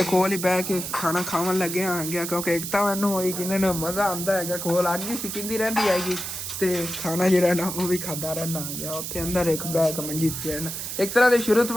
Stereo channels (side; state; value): right; noise; hiss, 6 dB below the sound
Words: ਕੋਲ ਹੀ ਬਹਿ ਕੇ ਖਾਣਾ ਖਾਣ ਲੱਗਿਆ ਆ ਗਿਆ ਕਿਉਂਕਿ ਇੱਕ ਤਾਂ ਮੈਨੂੰ ਹੋਈ ਕਿ ਇਹਨਾਂ ਨੂੰ ਮਜ਼ਾ ਆਉਂਦਾ ਹੈਗਾ ਕੋਲ ਅੱਗ ਹੀ ਸਿੱਕਦੀ ਰਹਿੰਦੀ ਹੈਗੀ ਤੇ ਖਾਣਾ ਜਿਹੜਾ ਨਾ ਉਹ ਵੀ ਖਾਂਦਾ ਰਹਿਣਾ ਆ ਗਿਆ ਉੱਥੇ ਅੰਦਰ ਇੱਕ ਬਹਿ ਕੇ ਮੰਜੀ ਤੇ ਰਹਿਣਾ ਇੱਕ ਤਰ੍ਹਾਂ ਦੇ ਸ਼ੁਰੂ ਤੋਂ